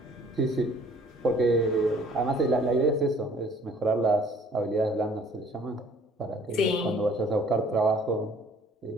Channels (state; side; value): normal; both; correlation 0.56